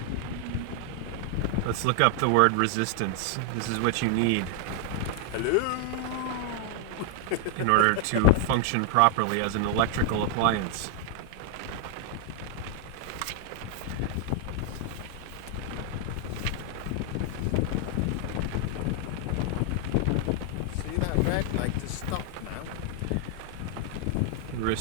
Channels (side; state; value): both; different; correlation 0.00